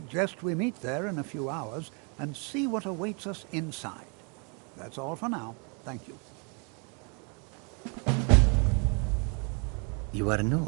we meet there in a few hours and see what awaits us inside. That's all for now. Thank you. You are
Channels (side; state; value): left; quieter; 35.7 dB